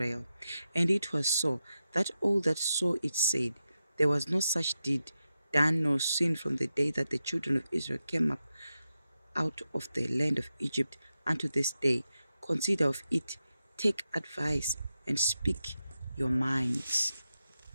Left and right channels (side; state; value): both; inverted; correlation -0.89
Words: And it was so, that all that saw it said, There was no such deed done nor seen from the day that the children of Israel came up out of the land of Egypt unto this day. Consider of it, take advice, and speak your minds.